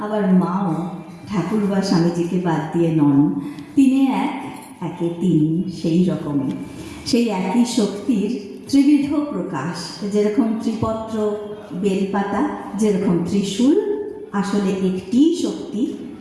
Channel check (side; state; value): both; identical; correlation 1.00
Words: আবার মাও ঠাকুর বা স্বামীজিকে বাদ দিয়ে নন। তিনে এক, একে তিন, সেই রকমই সেই একই শক্তির ত্রিবিধ প্রকাশ। যেরকম ত্রিপত্র বেলপাতা, যেরকম ত্রিশূল, আসলে একটি শক্তি